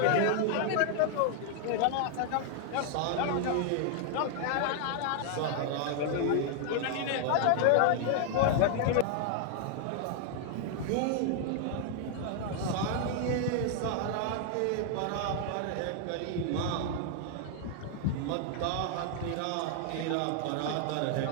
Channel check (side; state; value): both; different; correlation 0.00